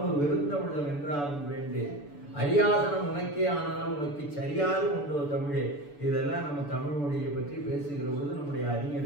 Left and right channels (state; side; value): late; right; 6.9 ms